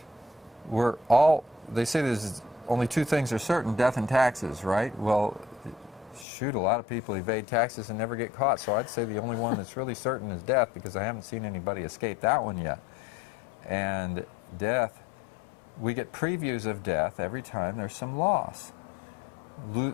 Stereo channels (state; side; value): drops out; right; at 6.2 s